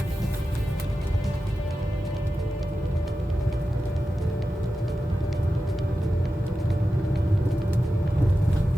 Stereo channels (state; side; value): normal; both; correlation 0.92